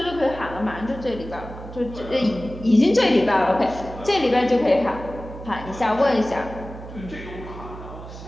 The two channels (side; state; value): right; noise; hum, 13 dB below the sound